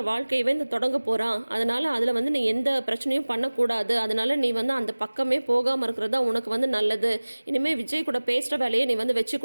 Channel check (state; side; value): inverted; both; correlation -1.00